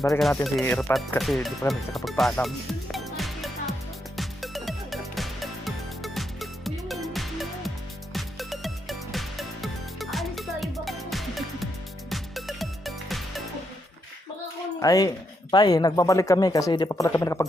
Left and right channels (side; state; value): both; normal; correlation 0.80